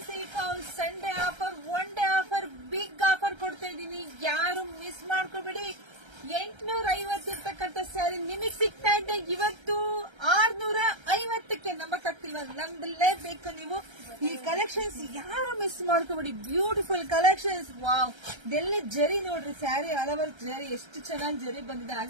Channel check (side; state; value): left; late; 1.3 ms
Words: silk house. Sunday offer, one day offer, big offer ಕೊಡ್ತಾ ಇದ್ದೀನಿ. ಯಾರು ಮಿಸ್ ಮಾಡ್ಕೊಬೇಡಿ. 850 ಇರ್ತಕ್ಕಂಥ ಸ್ಯಾರಿ ನಿಮಗ್ ಸಿಗ್ತಾ ಇದೆ ಇವತ್ತು 650ಕ್ಕೆ. ನಂಬಕ್ಕಾಗ್ತಿಲ್ವಾ? ನಂಬಲೇಬೇಕು ನೀವು. ಈ ಕಲೆಕ್ಷನ್ಸ್ ಯಾರು ಮಿಸ್ ಮಾಡ್ಕೊಬೇಡಿ. Beautiful collections. ವಾವ್, ಇದೆಲ್ಲ ಜರಿ ನೋಡ್ರಿ. ಸ್ಯಾರಿ ಆಲ್ ಓವರ್ ಜರಿ, ಎಷ್ಟು ಚೆನ್ನಾಗಿ ಜರಿ ಬಂದಿದೆ.